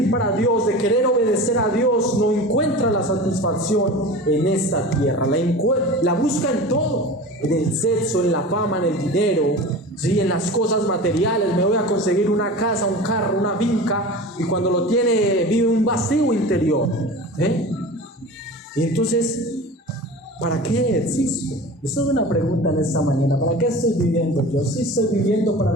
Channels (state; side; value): normal; both; correlation 0.34